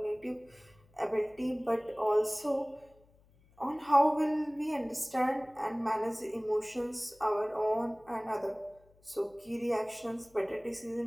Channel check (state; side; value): noise; left; hum, 30 dB below the sound